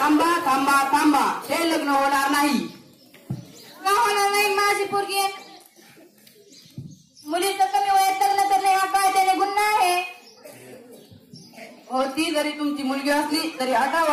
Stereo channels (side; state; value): both; identical; correlation 1.00